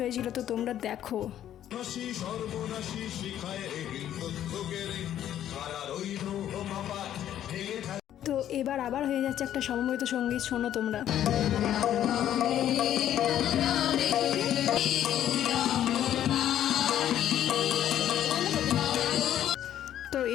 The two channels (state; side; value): quieter; right; 11.2 dB